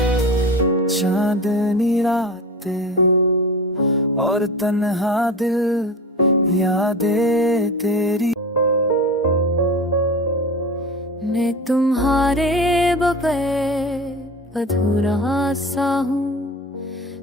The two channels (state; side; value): normal; both; correlation 0.32